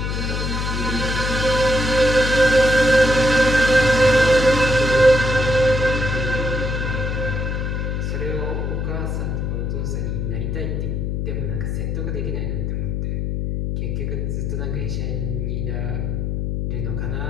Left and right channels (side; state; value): left; noise; hum, 1 dB below the sound